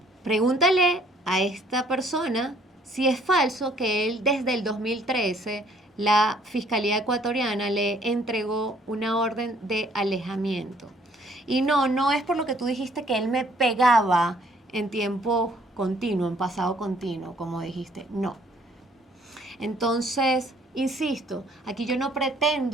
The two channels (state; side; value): normal; both; correlation 0.61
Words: Pregúntale a esta persona si es falso que él desde el 2013 la Fiscalía Ecuatoriana le entregó una orden de alejamiento. Y no es por lo que tú dijiste que él me pegaba en tiempo continuo, en pasado continuo, como dijiste. No. Entonces, insisto, aquí yo no